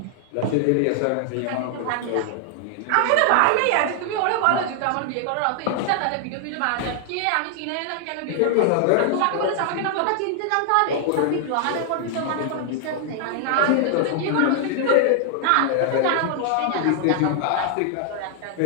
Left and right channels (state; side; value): different; both; correlation 0.00